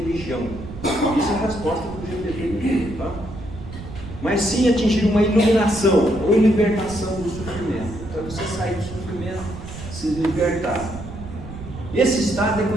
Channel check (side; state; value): right; noise; rumble, 12 dB below the sound